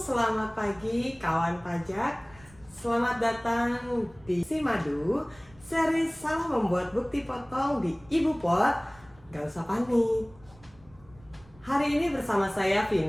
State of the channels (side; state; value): right; noise; rumble, 26 dB below the sound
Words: pagi kawan pajak. Selamat datang di Simadu, seri salah membuat bukti potong di Ibu Pot. Gak usah panik. Hari ini bersama saya